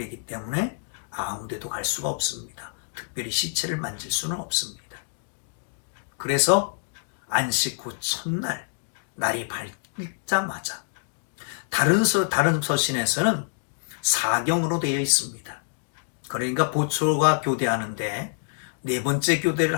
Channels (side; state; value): right; silent; digital silence